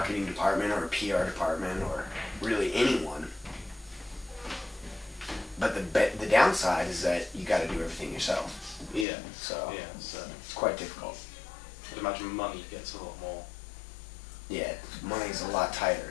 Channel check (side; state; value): right; drops out; at 9.1 s